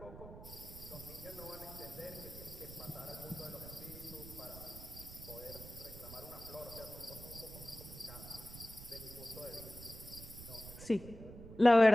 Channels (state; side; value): noise; right; rumble, 14 dB below the sound